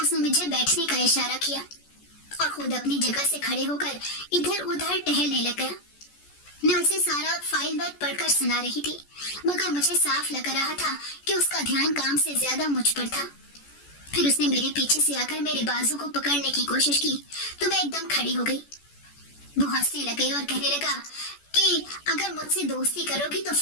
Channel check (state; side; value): late; right; 14 ms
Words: मुझे बैठने का इशारा किया और खुद अपनी जगह से खड़े होकर इधर उधर टहलने लगा। मैं उसे सारा फाइल वर्क पढ़कर सुना रही थी, मगर मुझे साफ लग रहा था कि उसका ध्यान काम से ज्यादा मुझ पर था। फिर उसने मेरे पीछे से आकर मेरे बाजू को पकड़ने की कोशिश की तो मैं एकदम खड़ी हो गई। वो हंसने लगे और कहने लगा कि अगर मुझसे दोस्ती करोगी तो